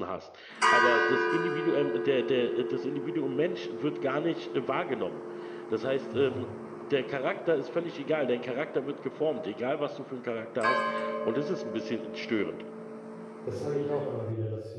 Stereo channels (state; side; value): identical; both; correlation 1.00